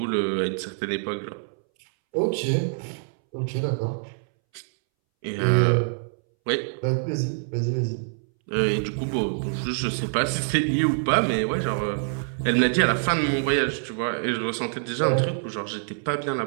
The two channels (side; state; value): left; silent; 61 dB below the other